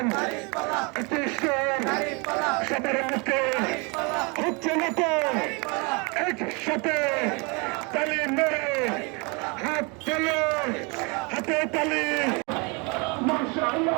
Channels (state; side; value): quieter; left; 30.4 dB